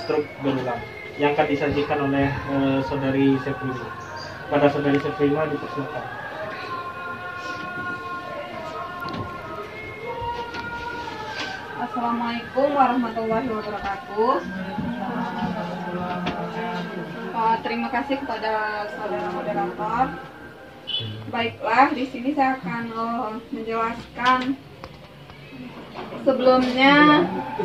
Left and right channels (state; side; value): identical; both; correlation 1.00